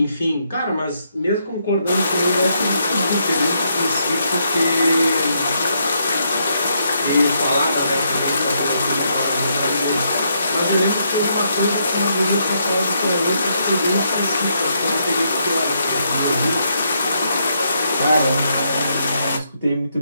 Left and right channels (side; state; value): both; inverted; correlation -0.77